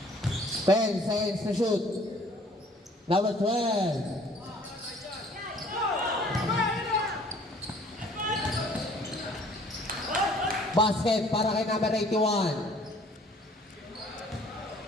10 seconds to shoot. Number 12. Basket para kay number 81.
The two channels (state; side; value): normal; both; correlation 0.56